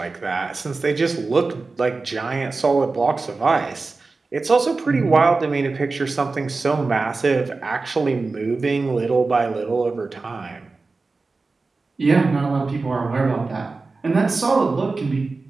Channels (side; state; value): left; quieter; 3.8 dB